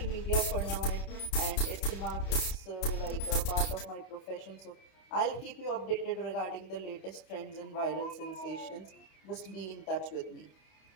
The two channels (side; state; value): right; late; 31 ms